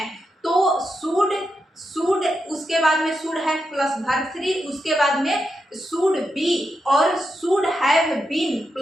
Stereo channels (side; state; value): both; normal; correlation 0.86